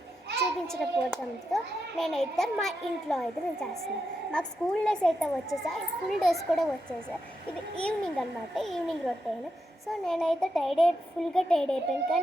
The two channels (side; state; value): both; normal; correlation 0.85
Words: చూపించకపోవడంతో నేనైతే మా ఇంట్లో అయితే నేను చేస్తున్నాను. మాకు స్కూల్ డేస్ అయితే వచ్చేసా, ఫుల్ డేస్ కూడా వచ్చేసా. ఇది ఈవినింగ్ అనమాట, ఈవినింగ్ రొటీన్. సో నేనైతే ఫుల్గా టైర్డ్ అయిపోయాను,